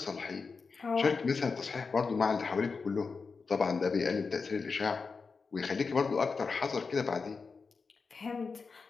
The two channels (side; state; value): right; quieter; 4.8 dB